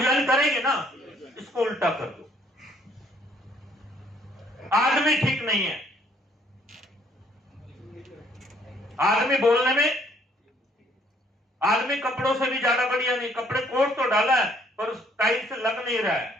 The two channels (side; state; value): both; normal; correlation 0.64